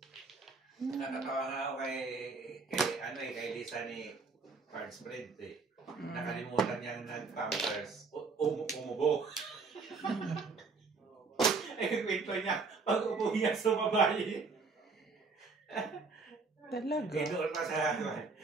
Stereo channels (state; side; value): quieter; left; 4.4 dB